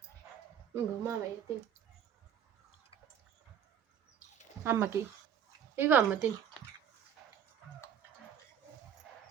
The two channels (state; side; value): quieter; left; 8.8 dB